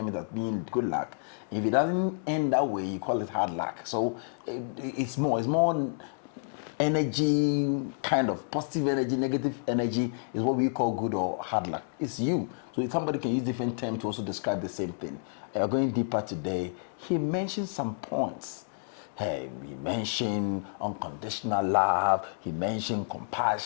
it as being good luck. If it doesn't end that way, you call it hard luck. So it's more energy, kind of positive energy, negative energy is what we call good or hard luck. It's you. So somebody can use different terms to also describe the same thing. Going deeper today, he mentioned some points. Hey, he mentioned unconditional love. He mentioned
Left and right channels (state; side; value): silent; right; digital silence